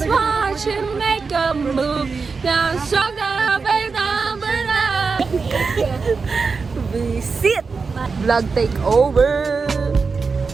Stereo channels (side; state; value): left; quieter; 4.7 dB